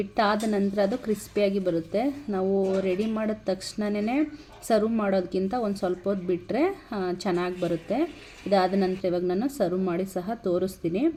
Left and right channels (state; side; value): identical; both; correlation 1.00